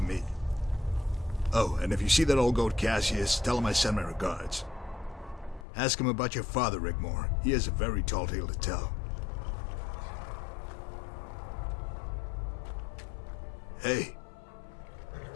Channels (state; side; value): drops out; right; at 5.7 s